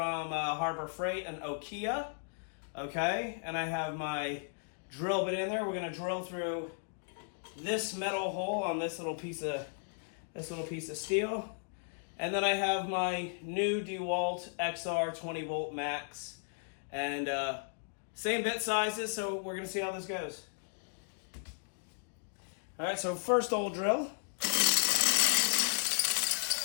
Harbor Freight and Aokia. Okay, and I have my drill bit in there. We're gonna drill through this metal hole on this little piece of steel, and then I have my new Dewalt XR 20 volt max, and same bit sizes. So we're gonna see how this goes. All right, so first old drill.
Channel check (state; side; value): silent; right; digital silence